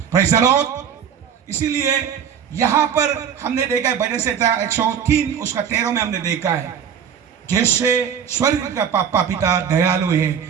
Praise the Lord. इसीलिए यहां पर हमने देखा है भजन संहिता 103 उसका 13 में हमने देखा है, जैसे स्वर्ग का पापा पिता दयालु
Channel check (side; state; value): left; quieter; 8.0 dB